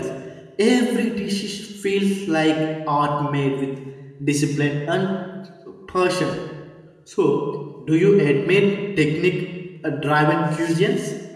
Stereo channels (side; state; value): both; identical; correlation 1.00